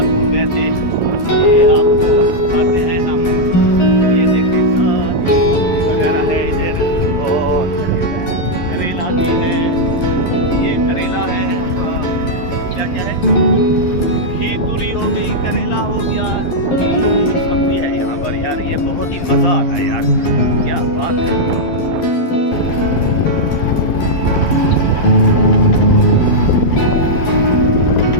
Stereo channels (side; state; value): right; late; 11 ms